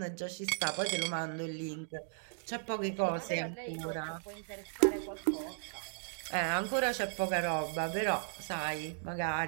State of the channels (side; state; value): left; silent; digital silence